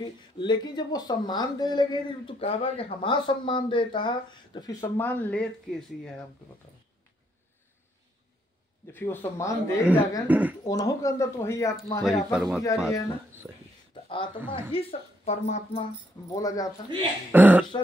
लेकिन जब वो सम्मान दे लगे, तो कहा कि हमारा सम्मान देता है, तो फिर सम्मान लेत कैसी है हमको बताओ। जब फिर वो सम्मान दे जाएगा, तो उन्हों के अंदर तो वही आत्मा है, आत्मा पुजारी है ना। तो आत्मा ही परमात्मा बोला जाता है,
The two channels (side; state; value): both; normal; correlation 0.73